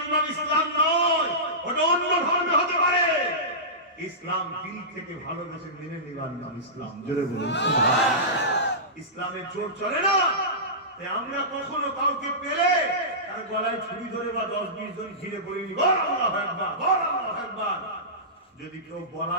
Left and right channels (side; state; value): both; normal; correlation -0.19